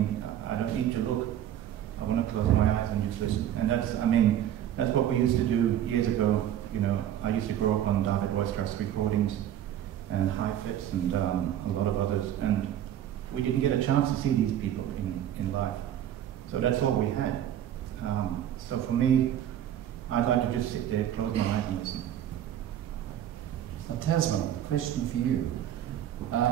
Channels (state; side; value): quieter; left; 11.1 dB